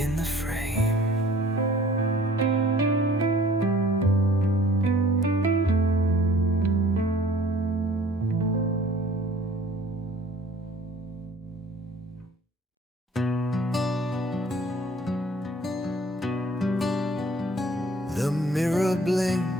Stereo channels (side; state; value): both; normal; correlation 0.51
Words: the frame. The mirror